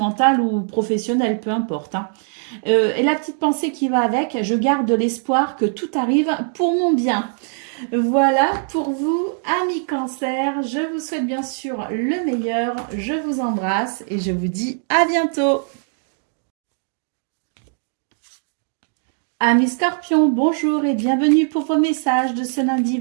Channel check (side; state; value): left; silent; 60 dB below the other